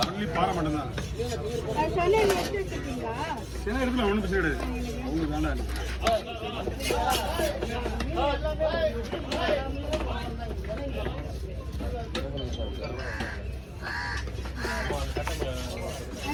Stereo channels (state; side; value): identical; both; correlation 1.00